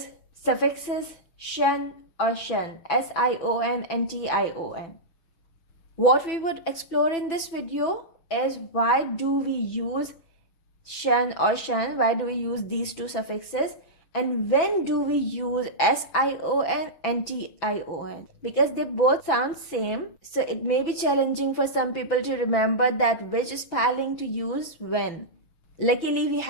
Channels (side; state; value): right; late; 6.0 ms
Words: suffixes, SION or TION, SION and TION. What we would explore in this video is why do we use SION or TION, why do we use these two suffixes, and when do we use SION and TION, because they both sound same, so it may be challenging for some people to remember that which spelling to use when. Luckily, we